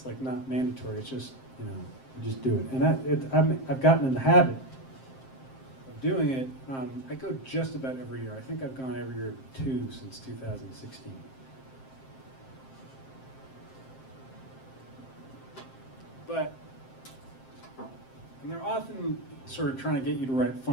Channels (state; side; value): late; right; 7.6 ms